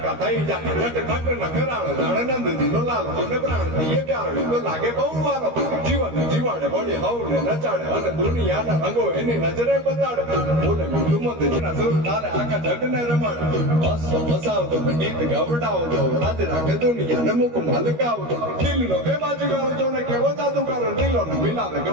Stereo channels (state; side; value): late; left; 13 ms